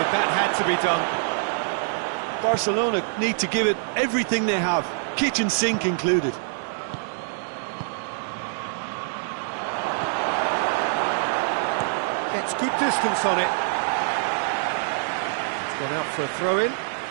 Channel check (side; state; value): left; silent; digital silence